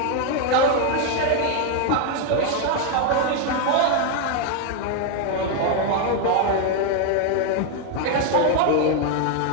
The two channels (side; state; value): both; different; correlation 0.01